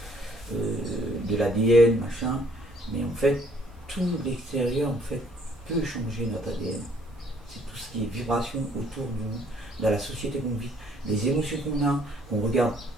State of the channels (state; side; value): normal; both; correlation 0.62